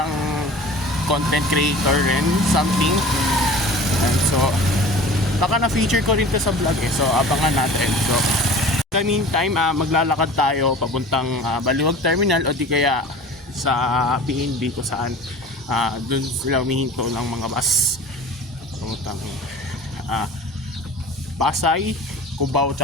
content creator rin, something. And so baka na-feature ko rin to sa vlog eh. So abangan natin. So in the meantime, maglalakad tayo papuntang Baliwag Terminal o di kaya sa PNB kung saan dun sila humihinto ng mga bus papuntang Pasay, Cubao,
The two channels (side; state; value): both; normal; correlation 0.41